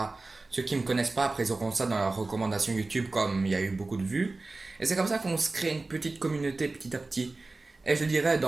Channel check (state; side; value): quieter; left; 3.3 dB